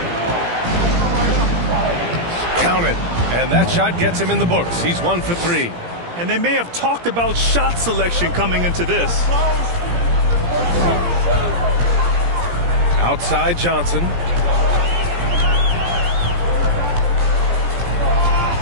Count it. And that shot gets him in the books. He's 1 for 3. And they may have talked about shot selection coming into this. Outside Johnson.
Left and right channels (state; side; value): late; left; 17 ms